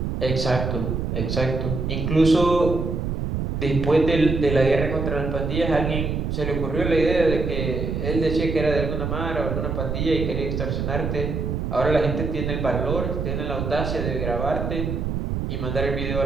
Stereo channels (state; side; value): noise; right; rumble, 2 dB below the sound